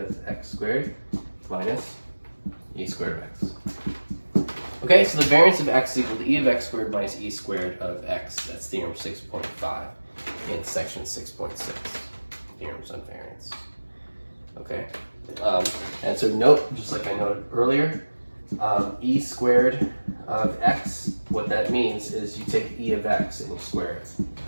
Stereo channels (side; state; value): both; inverted; correlation -1.00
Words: x squared minus e squared of x. Okay, so the variance of x is equal to e of x squared minus e squared of x. That's theorem 6.5 in section 6.6, theorems on variance. Okay, and so note, just like I noted earlier, e squared of x, what that means is you take e of x and you square